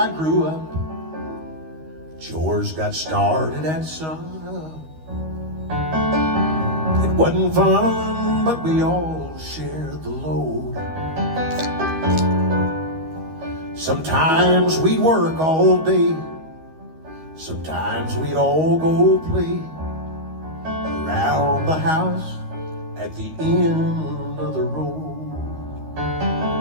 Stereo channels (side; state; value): left; late; 13 ms